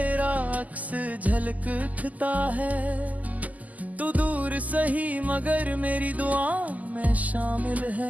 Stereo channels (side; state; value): left; late; 0.077 ms